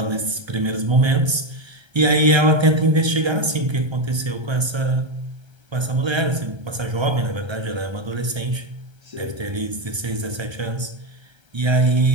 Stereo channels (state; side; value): late; left; 1.3 ms